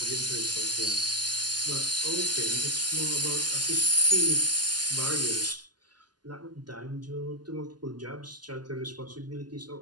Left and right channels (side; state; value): left; late; 0.70 ms